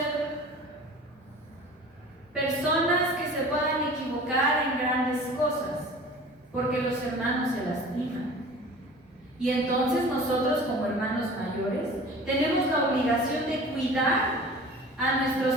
personas que se puedan equivocar en grandes cosas, porque los hermanos se lastiman. Y entonces nosotros como hermanos mayores tenemos la obligación de cuidar a nuestros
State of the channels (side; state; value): both; normal; correlation 0.42